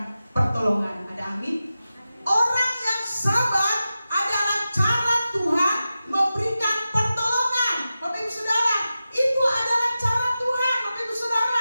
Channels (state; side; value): inverted; both; correlation -0.93